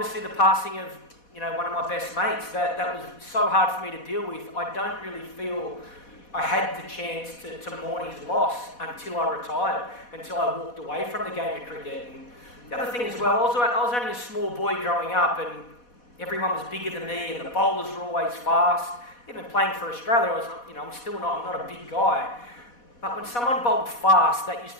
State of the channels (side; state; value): right; late; 4.1 ms